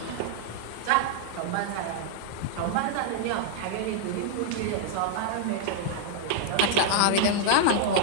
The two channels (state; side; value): different; both; correlation -0.01